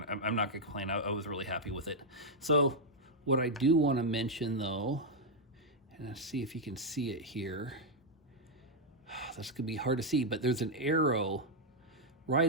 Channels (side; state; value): both; normal; correlation -0.01